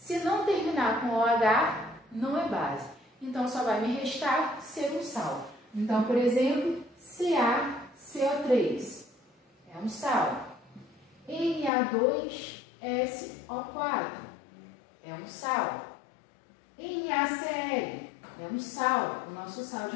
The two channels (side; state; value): right; drops out; at 11.7 s